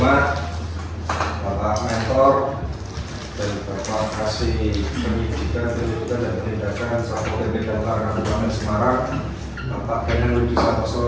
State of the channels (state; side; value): identical; both; correlation 1.00